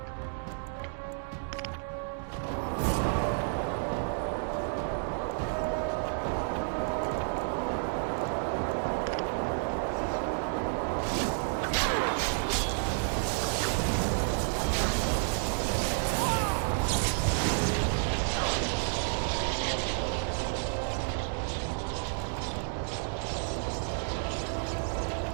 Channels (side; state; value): left; silent; 57 dB below the other